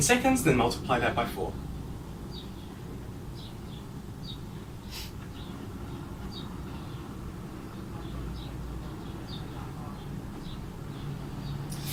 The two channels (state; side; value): identical; both; correlation 1.00